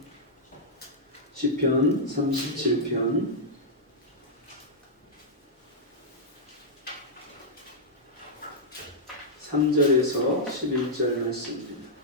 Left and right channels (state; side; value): normal; both; correlation -0.08